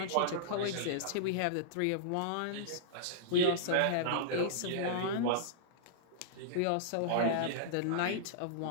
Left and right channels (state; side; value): different; both; correlation -0.02